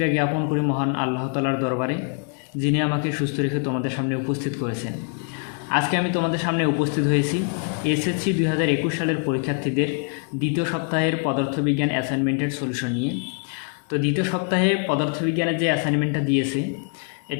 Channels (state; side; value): quieter; right; 40.0 dB